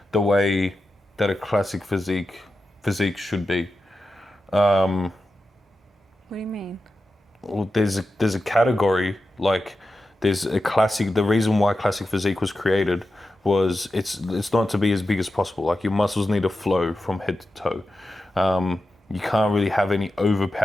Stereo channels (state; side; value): normal; both; correlation 0.91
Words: the way that a classic physique should be. What do you mean? Well, there's a category, like there's a classic. The reason why classic physique was created was it's not to be as big as possible. Like your muscles need to flow from head to toe. You can't really have any